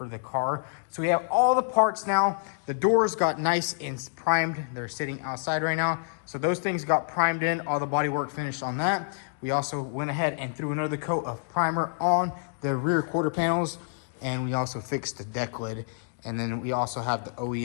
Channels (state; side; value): silent; right; digital silence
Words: the car. So we have all the parts now. The doors got nice and primed. They're sitting outside right now. So those things got primed in, all the body work finished on that. We also went ahead and threw another coat of primer on the rear quarter panels. And we also fixed the deck lid. And then we also have the